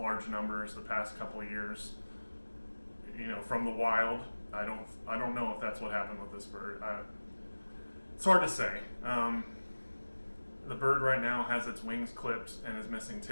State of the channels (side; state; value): both; inverted; correlation -1.00